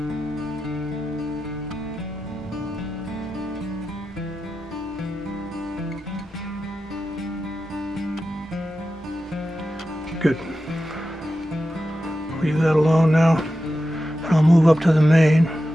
Good. Leave that alone now, and I'll move up to the mane.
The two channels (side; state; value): both; normal; correlation 0.91